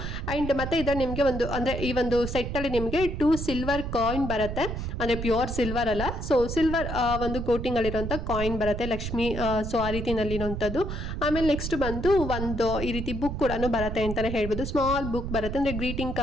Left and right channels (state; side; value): noise; right; rumble, 5 dB below the sound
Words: ಅಂಡ್ ಮತ್ತೆ ಇದರ ನಿಮ್ಗೆ ಒಂದು ಅಂದ್ರೆ ಈ ಒಂದು ಸೆಟ್ ಅಲ್ಲಿ ನಿಮ್ಗೆ 2 ಸಿಲ್ವರ್ ಕಾಯಿನ್ ಬರುತ್ತೆ, ಅಂದ್ರೆ ಪ್ಯೂರ್ ಸಿಲ್ವರ್ ಅಲ್ಲ. ಸೊ ಸಿಲ್ವರ್ ಒಂದು ಕೋಟಿಂಗ್ ಅಲ್ಲಿರುವಂತ ಕಾಯಿನ್ ಬರುತ್ತೆ, ಲಕ್ಷ್ಮಿ. ಸೊ ಆ ರೀತಿನಲ್ಲಿ ಇರುವಂತದ್ದು. ಆಮೇಲೆ ನೆಕ್ಸ್ಟ್ ಬಂದು ಒಂದು ಈ ರೀತಿ ಬುಕ್ ಕೂಡ ಬರುತ್ತೆ ಅಂತಾನೆ ಹೇಳ್ಬೋದು. ಸ್ಮಾಲ್ ಬುಕ್ ಬರುತ್ತೆ, ಅಂದ್ರೆ ಗ್ರೀಟಿಂಗ್